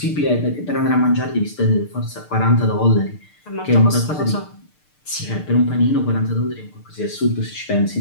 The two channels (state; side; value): late; right; 6.7 ms